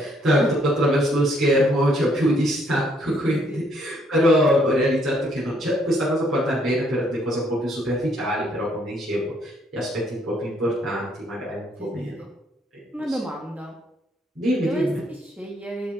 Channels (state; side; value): normal; both; correlation 0.68